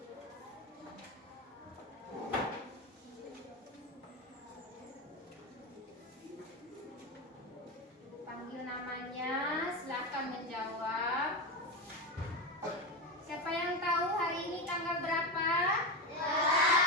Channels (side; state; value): both; normal; correlation 0.16